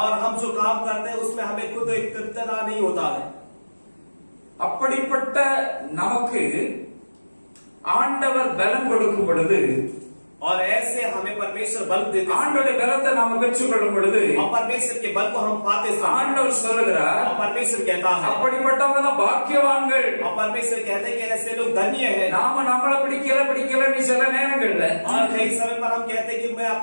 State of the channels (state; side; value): inverted; both; correlation -1.00